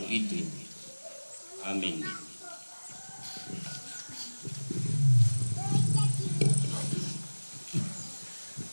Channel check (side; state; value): both; inverted; correlation -1.00